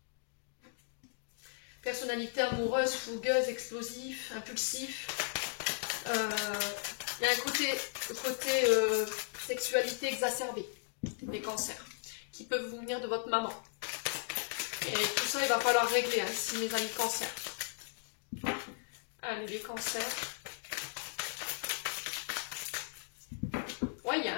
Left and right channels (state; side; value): silent; right; digital silence